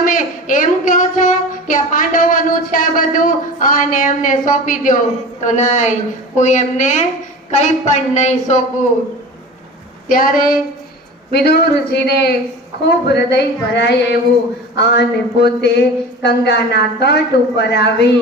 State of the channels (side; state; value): both; normal; correlation 0.35